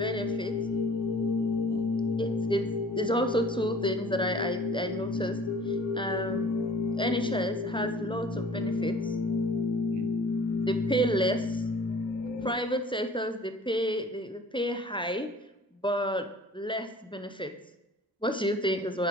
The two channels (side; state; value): both; normal; correlation 0.48